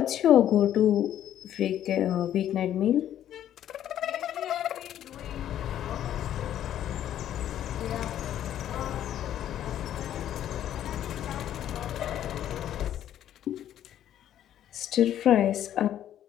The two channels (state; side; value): quieter; right; 11.2 dB